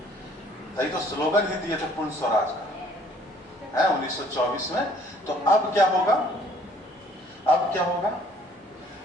यही तो स्लोगन ही दिए थे पूर्ण स्वराज का, है 1924 में। तो अब क्या होगा? अब क्या होगा?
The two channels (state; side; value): normal; both; correlation 0.59